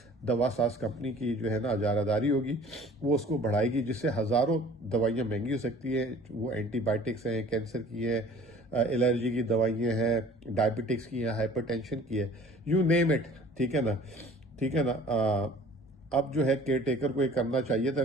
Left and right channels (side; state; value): both; normal; correlation 0.49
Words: دوا ساز کمپنی کی جو ہے نا اجارہ داری ہوگی، وہ اس کو بڑھائے گی، جس سے ہزاروں دوائیاں مہنگی ہو سکتی ہیں۔ وہ اینٹی بائیوٹکس ہیں، کینسر کی ہیں، الرجی کی دوائیاں ہیں، ڈائبٹکس کی ہیں، ہائپر ٹینشن کی ہے، یو نیم اٹ، ٹھیک ہے نا، ٹھیک ہے نا۔ اب جو ہے کیئر ٹیکر کو یہ کرنا چاہیے تھا،